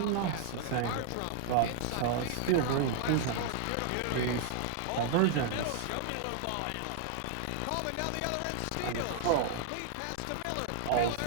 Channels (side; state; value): both; different; correlation 0.00